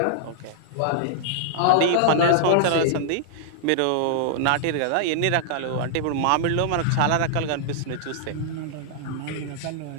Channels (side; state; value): both; different; correlation -0.01